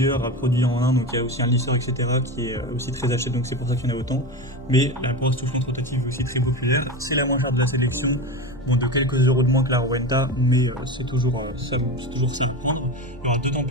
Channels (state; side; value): normal; both; correlation 0.23